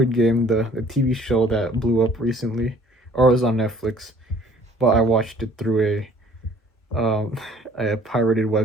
Game, the TV show that blew up recently, or it was on Netflix, but I watched it through a pirated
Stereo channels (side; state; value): both; normal; correlation 0.55